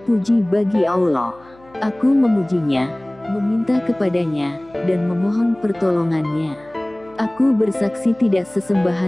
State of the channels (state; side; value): noise; left; hum, 27 dB below the sound